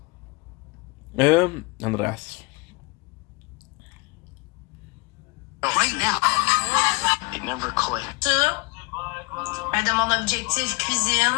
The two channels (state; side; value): quieter; right; 26.8 dB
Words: the Andreas. Right now. It never clicked. De mon objectif